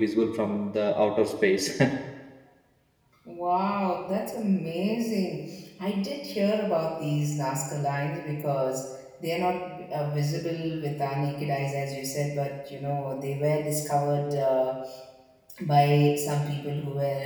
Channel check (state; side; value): identical; both; correlation 1.00